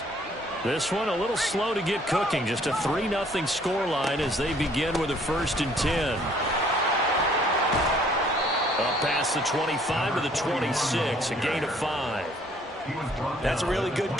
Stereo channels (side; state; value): both; normal; correlation 0.61